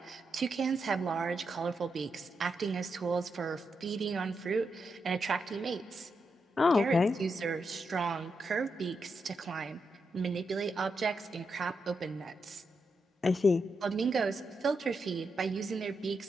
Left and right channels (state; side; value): normal; both; correlation 0.84